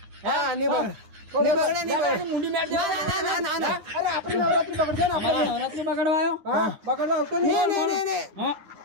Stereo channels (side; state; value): left; late; 9.7 ms